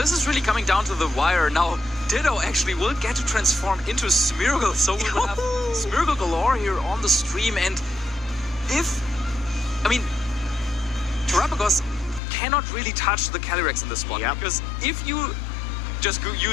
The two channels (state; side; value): drops out; right; at 12.2 s